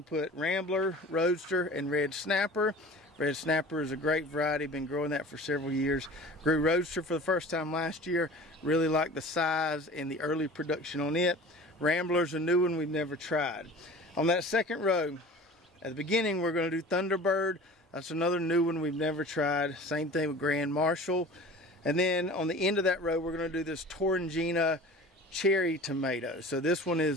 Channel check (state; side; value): normal; both; correlation 0.41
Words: to put Rambler, Roadster, and Red Snapper. Red Snapper is a great variety, been growing that for several years. Grew Roadster for the first time last year. Really like the size and the early production on it. Rambler's a new one we've never tried. On that second row, at the beginning, we're going to do Thunderbird. That's another new one we've never tried. Same thing with Grand Marshal. And then on the end of that row, we're going to do this Torringina cherry tomato. So this one